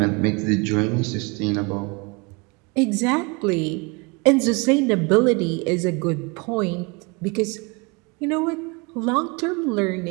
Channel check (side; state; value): left; quieter; 28.8 dB